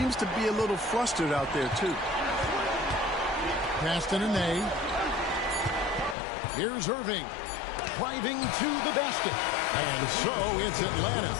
to be a little flustered out there, too. Pass to Nene. Here's Irving. Driving to the basket. And so it's Atlanta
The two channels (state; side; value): drops out; right; at 6.2 s